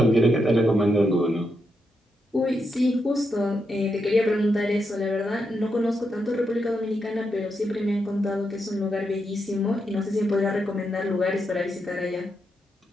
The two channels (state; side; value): normal; both; correlation 0.83